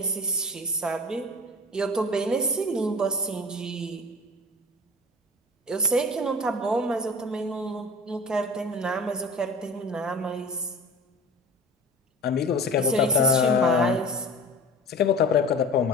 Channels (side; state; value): both; normal; correlation 0.38